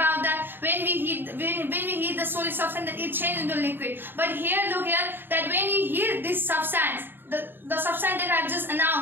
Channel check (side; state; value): left; late; 0.097 ms